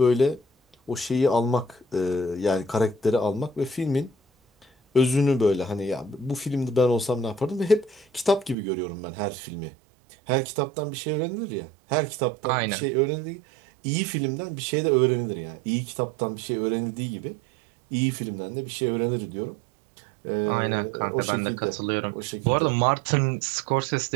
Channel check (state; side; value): drops out; left; at 8.6 s